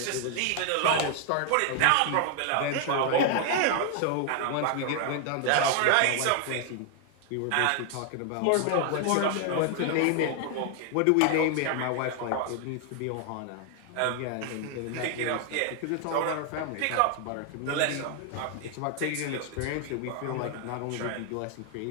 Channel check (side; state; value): both; different; correlation 0.00